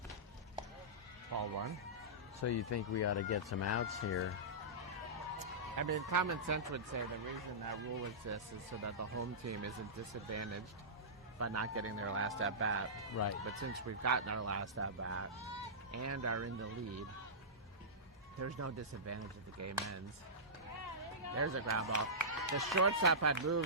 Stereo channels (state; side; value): normal; both; correlation -0.17